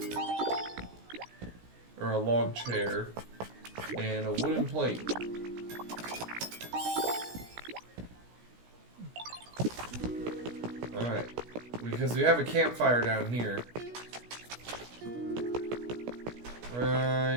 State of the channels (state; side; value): late; left; 17 ms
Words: Or a log chair. And a wooden plate. Alright. Because we have a campfire down here.